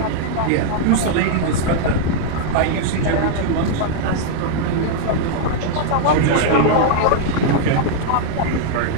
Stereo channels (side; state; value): both; different; correlation -0.01